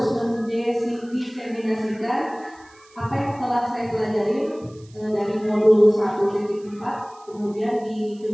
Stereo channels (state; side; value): noise; right; hiss, 28 dB below the sound